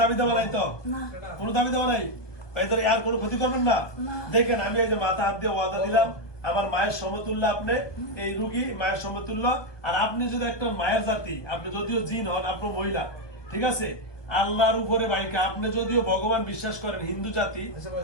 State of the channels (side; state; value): right; late; 1.2 ms